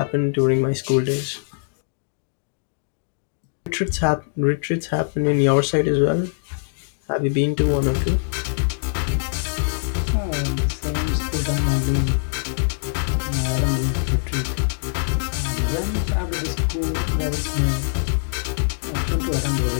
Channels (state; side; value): silent; right; digital silence